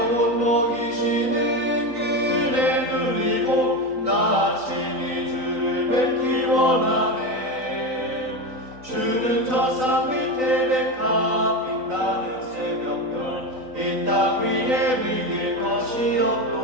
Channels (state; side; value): late; left; 3.9 ms